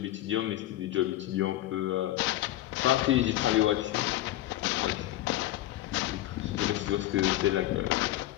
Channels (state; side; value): quieter; right; 14.9 dB